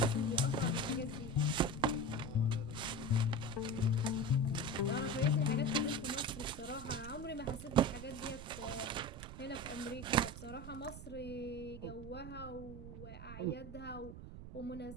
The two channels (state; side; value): noise; right; rumble, 11 dB below the sound